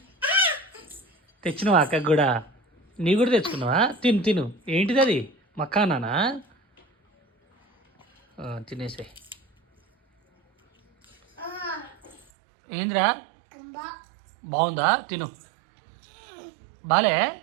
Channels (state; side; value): drops out; left; at 12.2 s